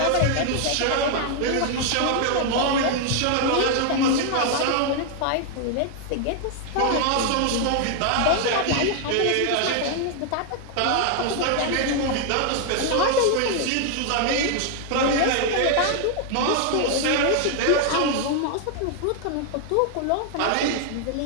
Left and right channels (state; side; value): different; both; correlation 0.00